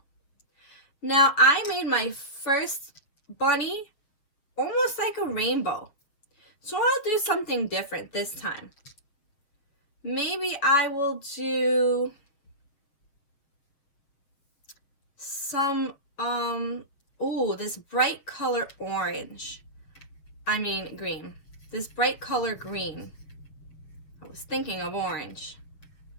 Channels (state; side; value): late; right; 7.2 ms